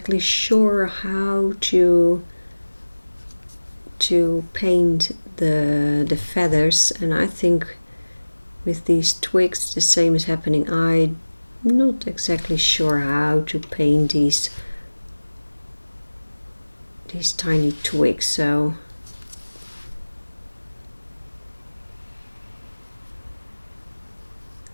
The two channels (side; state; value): both; inverted; correlation -1.00